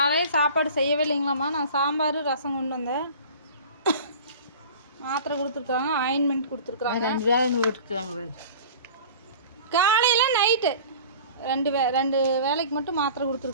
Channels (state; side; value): inverted; both; correlation -0.42